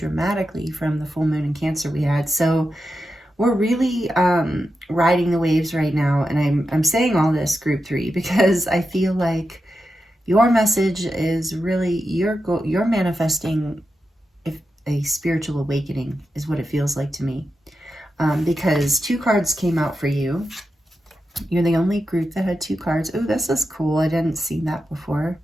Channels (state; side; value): normal; both; correlation 0.89